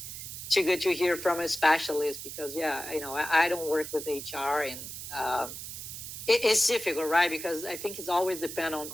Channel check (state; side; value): noise; right; hiss, 9 dB below the sound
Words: too good to hear from a specialist because I don't work with HR and it's difficult, right? Because I think it's always depend